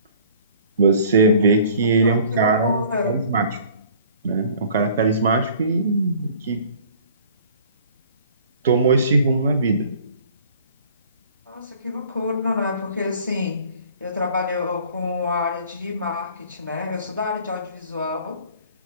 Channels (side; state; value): both; inverted; correlation -0.51